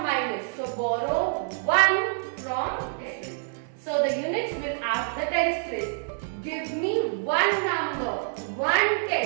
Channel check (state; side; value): silent; left; 60 dB below the other